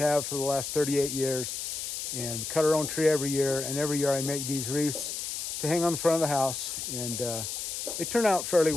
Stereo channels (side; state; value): left; noise; hiss, 4 dB below the sound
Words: for the last 38 years, and we cut our own tree every year. And every year I make these wreaths to hang on the front of the house, and they turn out fairly